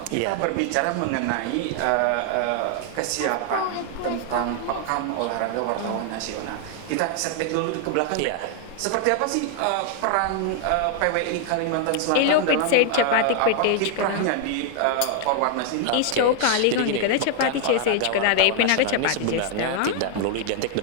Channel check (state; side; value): different; both; correlation 0.00